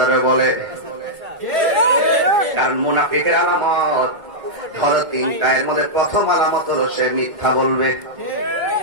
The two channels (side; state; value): left; late; 2.2 ms